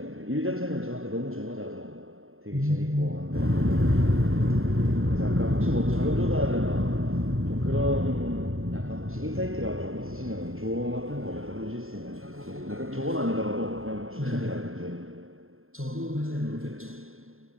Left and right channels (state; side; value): late; left; 0.61 ms